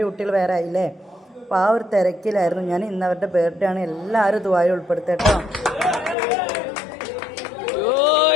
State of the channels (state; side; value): drops out; right; at 6.2 s